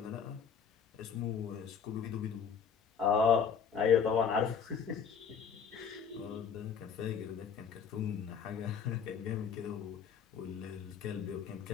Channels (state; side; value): quieter; right; 6.9 dB